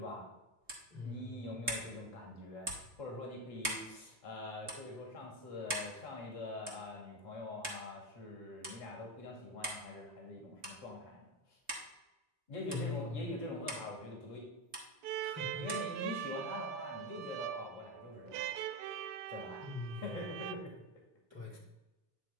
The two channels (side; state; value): left; late; 3.7 ms